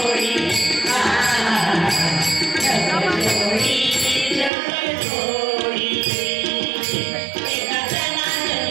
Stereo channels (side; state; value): left; drops out; at 4.5 s